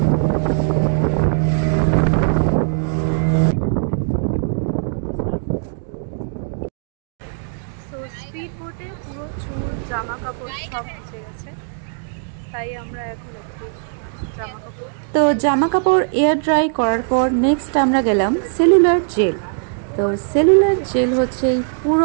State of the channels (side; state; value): left; silent; digital silence